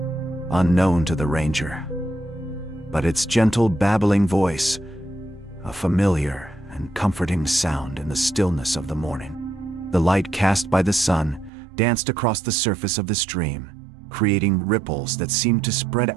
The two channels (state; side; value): drops out; left; at 11.5 s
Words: unknown to the ranger. But its gentle babbling voice, a familiar and comforting sound in the stillness of the morning. The light cast by the sun danced across the surface of the stream, creating ripples that seemed to spread